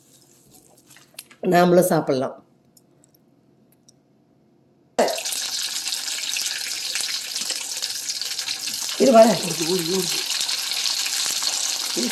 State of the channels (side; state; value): both; identical; correlation 1.00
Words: நாமளும் சாப்பிட்லாம். இது வர